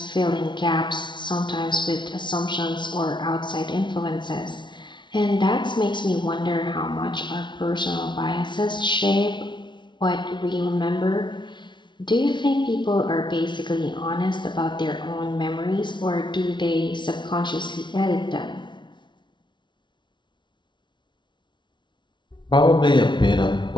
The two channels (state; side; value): late; right; 0.23 ms